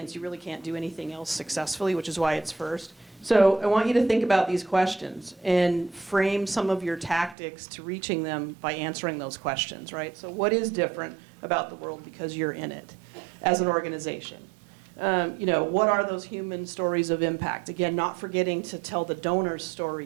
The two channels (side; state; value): left; drops out; at 7.4 s